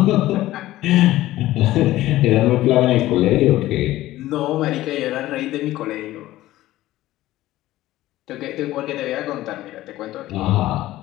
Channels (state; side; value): quieter; right; 15.8 dB